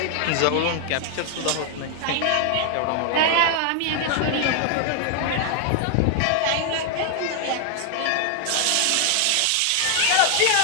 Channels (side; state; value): both; different; correlation 0.00